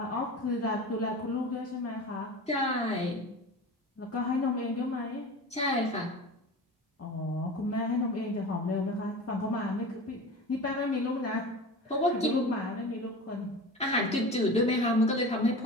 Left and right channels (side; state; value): both; normal; correlation 0.33